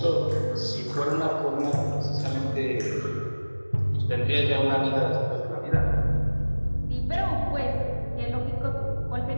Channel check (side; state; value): both; inverted; correlation -1.00